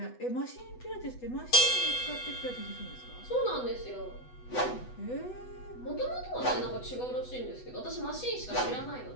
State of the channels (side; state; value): right; late; 8.1 ms